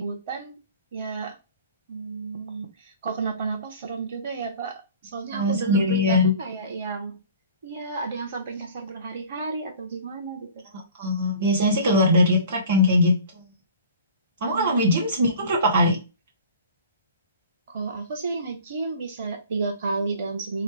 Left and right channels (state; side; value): inverted; both; correlation -0.43